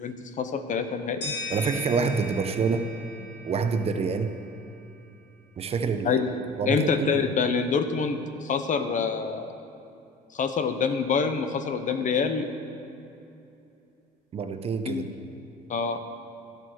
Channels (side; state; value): both; normal; correlation 0.39